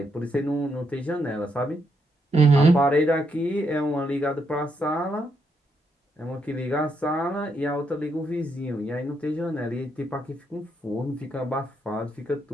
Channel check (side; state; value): both; normal; correlation 0.78